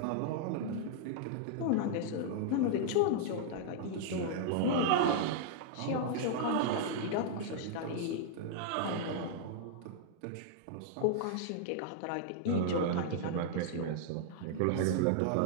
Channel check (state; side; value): different; both; correlation -0.01